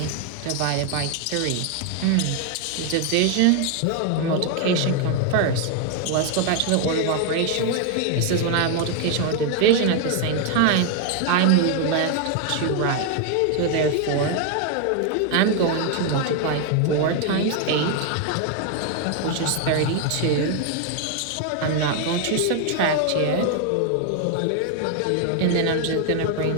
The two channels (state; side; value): different; both; correlation 0.00